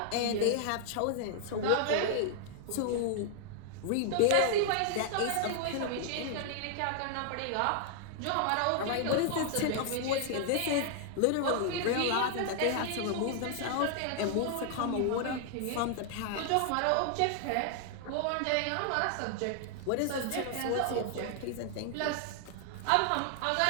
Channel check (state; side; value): different; both; correlation 0.00